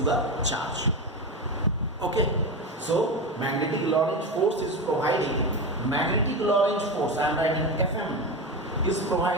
charge. Okay. So magnetic Lorentz force is providing, magnetic Lorentz force, I am writing Fm, is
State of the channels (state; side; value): normal; both; correlation 0.19